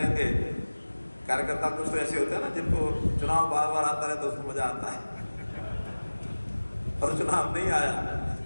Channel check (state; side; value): inverted; both; correlation -1.00